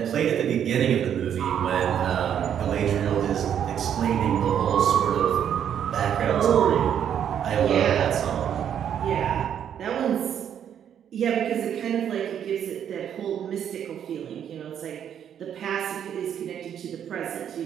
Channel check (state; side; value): quieter; left; 9.1 dB